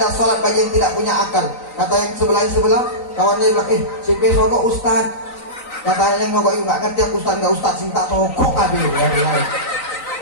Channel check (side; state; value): right; late; 3.9 ms